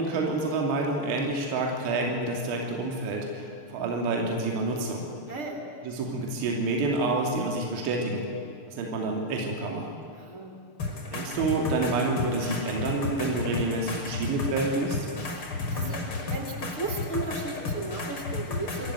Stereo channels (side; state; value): right; late; 6.7 ms